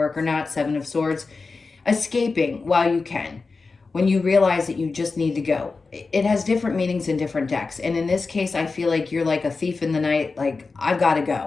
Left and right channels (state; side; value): quieter; right; 4.2 dB